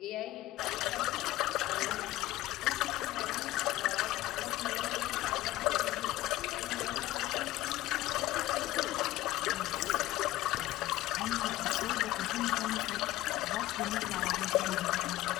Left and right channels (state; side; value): quieter; right; 16.1 dB